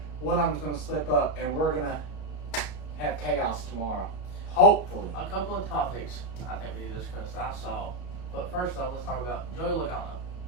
one of them's going to slip up, and we're going to have chaos tomorrow. Hopefully. A couple of topics I think we need to discuss that I saw. But first off, let's talk about Joey Logano.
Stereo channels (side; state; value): right; late; 33 ms